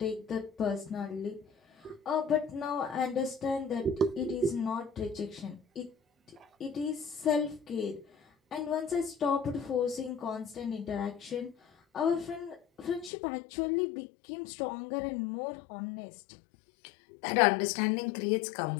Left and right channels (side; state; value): right; drops out; at 13.1 s